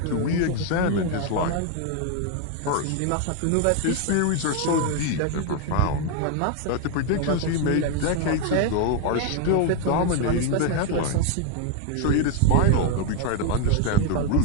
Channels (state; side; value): different; both; correlation 0.01